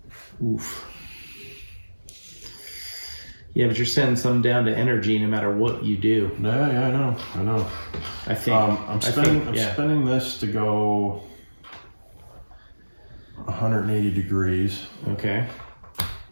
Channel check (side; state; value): both; inverted; correlation -1.00